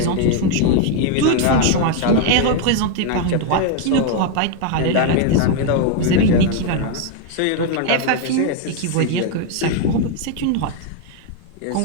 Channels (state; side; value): different; both; correlation 0.01